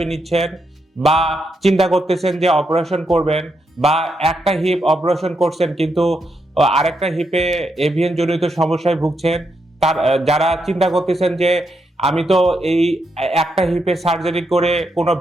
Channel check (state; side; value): normal; both; correlation 0.81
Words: নিচ্ছেন, বা চিন্তা করতেছেন যে অপারেশন করবেন, বা একটা হিপ অপারেশন করছেন কিন্তু আরেকটা হিপে এভিএন জনিত সমস্যায় ভুগছেন। তার যারা চিন্তা করতেছেন যে আমি তো এই একটা হিপে সার্জারি করে কোনো